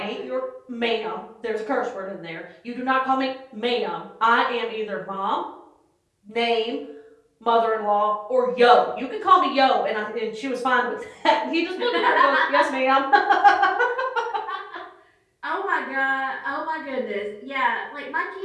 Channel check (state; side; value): identical; both; correlation 1.00